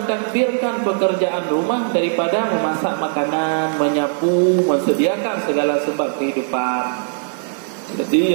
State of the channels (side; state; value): left; silent; 66 dB below the other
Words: pekerjaan rumah, daripada memasak makanan, menyapu, mensediakan segala sebab kehidupan. Jadi